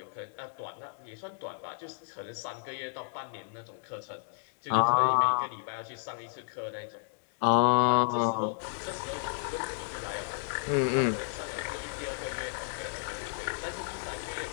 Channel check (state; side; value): silent; right; digital silence